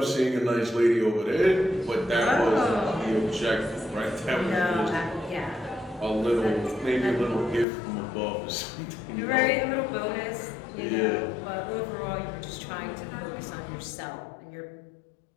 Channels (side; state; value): right; drops out; at 7.7 s